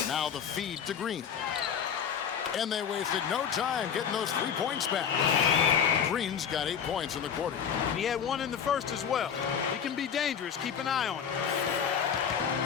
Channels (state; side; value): quieter; right; 7.7 dB